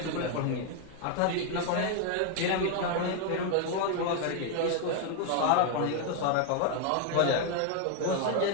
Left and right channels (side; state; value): both; different; correlation 0.00